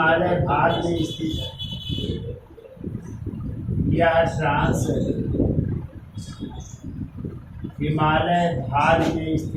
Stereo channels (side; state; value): both; identical; correlation 1.00